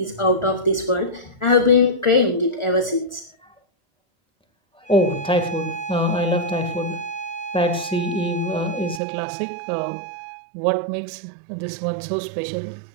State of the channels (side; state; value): left; drops out; at 9.0 s